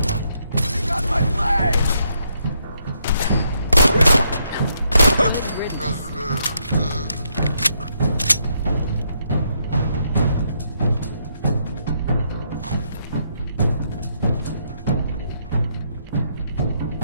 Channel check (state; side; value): inverted; both; correlation -0.75